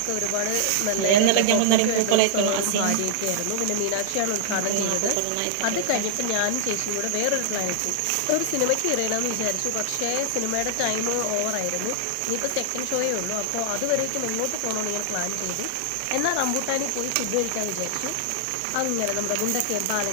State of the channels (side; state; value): both; different; correlation -0.01